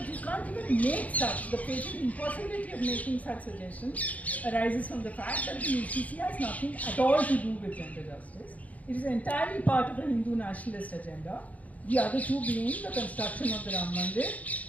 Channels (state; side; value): late; right; 0.072 ms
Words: you can't even make such. The patent impossibility of making such suggestions arises from the fact that the UCC has nothing at all to do with gender justice. It is entirely part of a Hindu nationalist agenda. The other two being the construction of the Ram